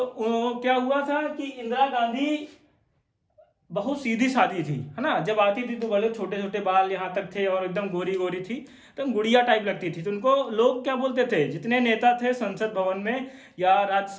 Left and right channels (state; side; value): identical; both; correlation 1.00